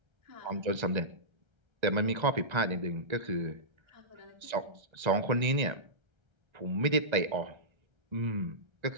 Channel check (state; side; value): late; left; 1.3 ms